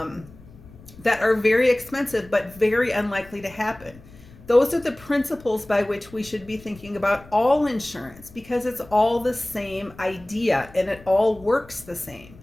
are very expensive but very unlikely to happen. Those are the principles by which we should be thinking about all insurance, because it's all the same idea and it all works the same.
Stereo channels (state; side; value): noise; left; rumble, 22 dB below the sound